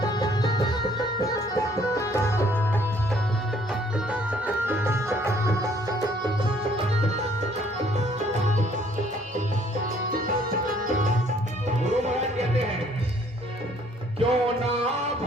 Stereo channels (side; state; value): both; normal; correlation 0.62